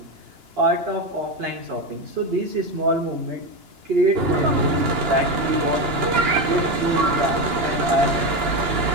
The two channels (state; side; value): late; left; 2.9 ms